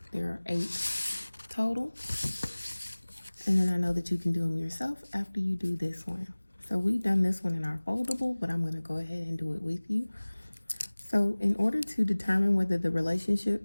There are 8 total. And then I know that you can do them yourself after you do this one. So we've done this one in our foldable, but I'm going to go ahead and do it with you. So in order to determine whether the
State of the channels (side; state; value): both; inverted; correlation -1.00